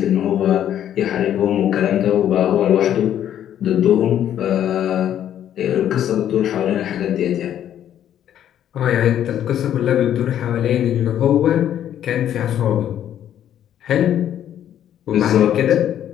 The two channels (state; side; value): quieter; right; 10.6 dB